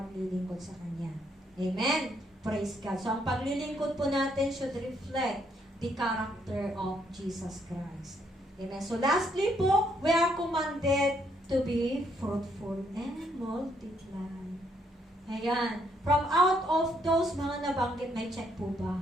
sa Kanya. Amen. Praise God. So ang paglilingkod po natin should reflect the character of Jesus Christ. Amen. So lastly po, we are commanded to be fruitful and multiply. Ayan. From out of those mga nabanggit, may check po ba?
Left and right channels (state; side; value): normal; both; correlation 0.72